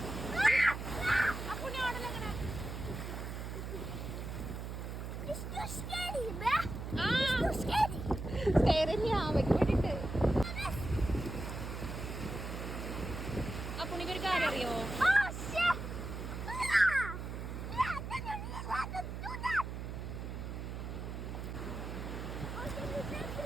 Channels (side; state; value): right; noise; hum, 6 dB below the sound